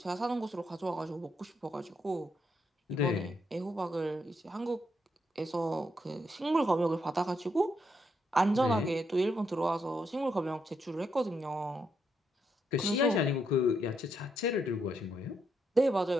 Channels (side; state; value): both; normal; correlation 0.79